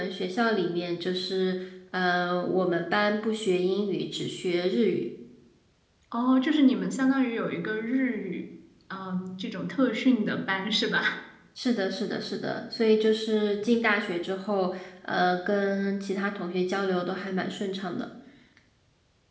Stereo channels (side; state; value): both; identical; correlation 1.00